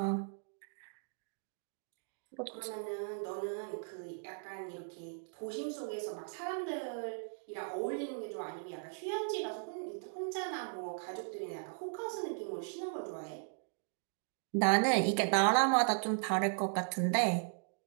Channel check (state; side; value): silent; left; digital silence